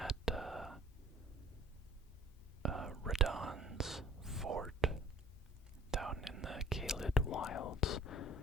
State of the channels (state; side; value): normal; both; correlation 0.51